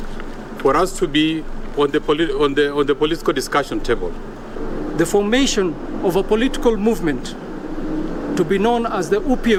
for us to be on the political discussion table. The formation of a political movement to be known as the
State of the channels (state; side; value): identical; both; correlation 1.00